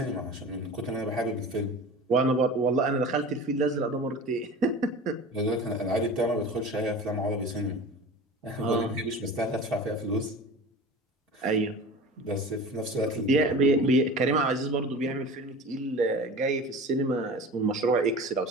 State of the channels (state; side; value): normal; both; correlation 0.36